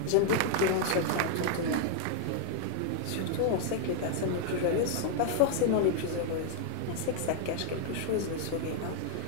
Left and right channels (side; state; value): both; different; correlation 0.00